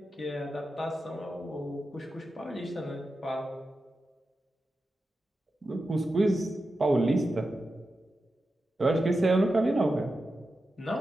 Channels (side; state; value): both; normal; correlation 0.91